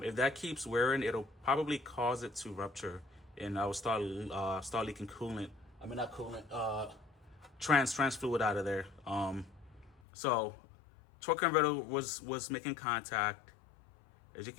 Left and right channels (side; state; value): right; drops out; at 10.0 s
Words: that keeps wearing, it'll probably cause it to rupture, and I will start leaking coolant. I mean, not coolant, trans fluid out of there. So torque converter was making contact. As you